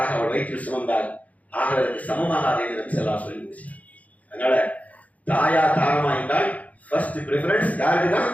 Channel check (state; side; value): late; right; 0.071 ms